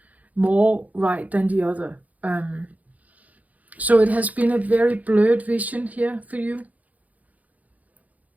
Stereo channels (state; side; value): late; left; 0.076 ms